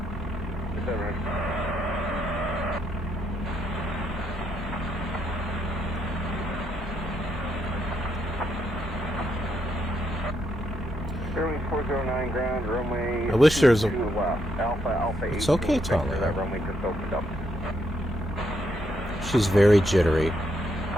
Is that right? Airway 409 ground, runway. I wish there's a. Alpha It's okay, Talia. That runway just opened up. She's very jittery.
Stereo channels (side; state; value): both; normal; correlation 0.77